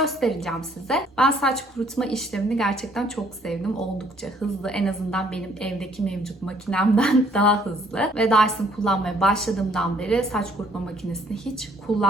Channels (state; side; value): normal; both; correlation 0.63